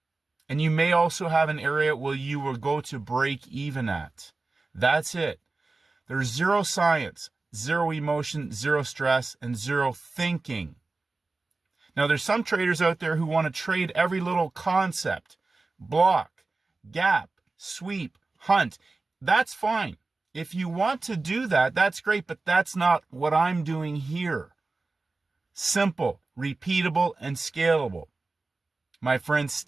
and you may also have an area where you will go to break even at. That's it. There's zero science, zero emotion, zero stress, and zero thinking. Now, there's some traders out there who want to trade every little concept, block, gap, sweep, hunt. That's fine. If you want to do that, that's great, but that's not what I'm doing here. Simple, repeatable, and scalable. My friend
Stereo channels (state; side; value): quieter; left; 3.5 dB